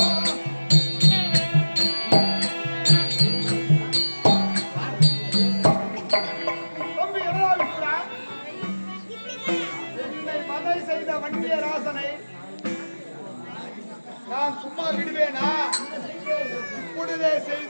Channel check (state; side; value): inverted; both; correlation -1.00